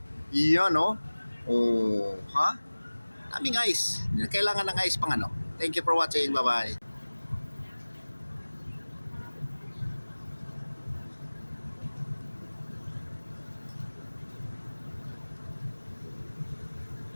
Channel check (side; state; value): both; inverted; correlation -1.00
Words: Yan oh. Oh, ha? Daming ice. Kailangan ng ice pang ano. Thank you for watching. Bye-bye.